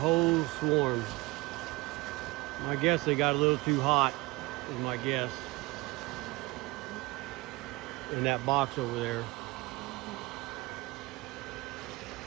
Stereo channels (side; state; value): left; quieter; 23.0 dB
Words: swarm. I guess they got a little too hot, is my guess, in that box over there.